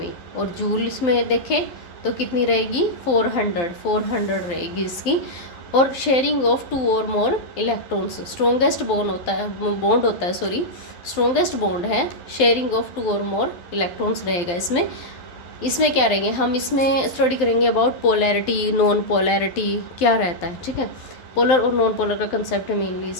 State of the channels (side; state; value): right; late; 12 ms